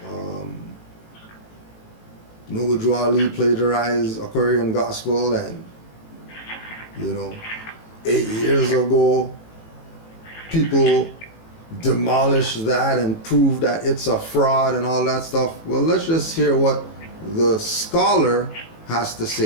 Noble Drew Ali plagiarized a Korean gospel, and 8 years ago people demolished that and proved that it's a fraud and all that stuff. Well, let's just hear what the scholar has to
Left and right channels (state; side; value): late; right; 18 ms